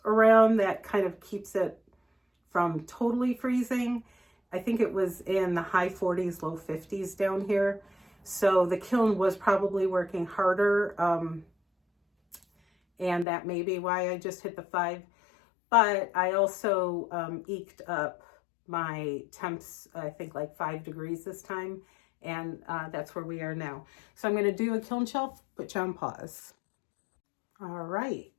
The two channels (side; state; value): right; drops out; at 13.2 s